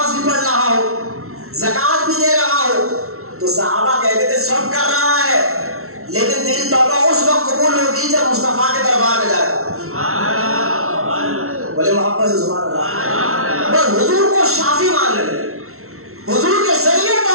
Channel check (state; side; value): late; left; 0.63 ms